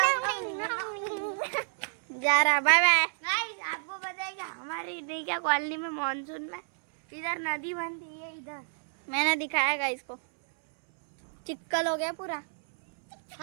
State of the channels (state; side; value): silent; left; 58 dB below the other